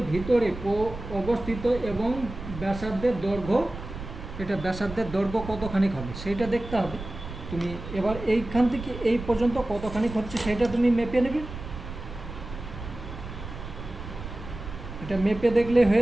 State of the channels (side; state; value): right; noise; rumble, 11 dB below the sound